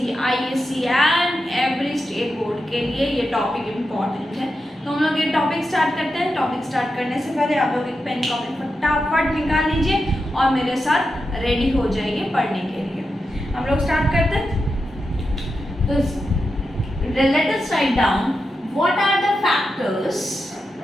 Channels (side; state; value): both; normal; correlation 0.88